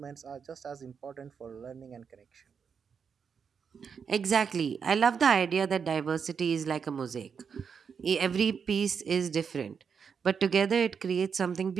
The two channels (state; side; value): quieter; left; 6.5 dB